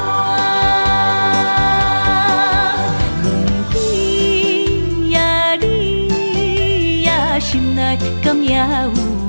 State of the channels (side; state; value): both; inverted; correlation -1.00